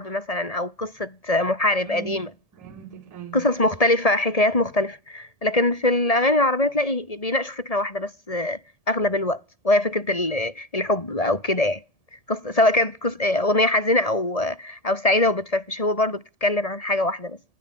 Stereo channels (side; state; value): right; late; 1.7 ms